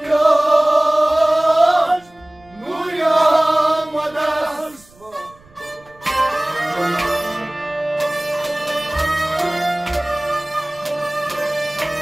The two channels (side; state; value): right; noise; rumble, 28 dB below the sound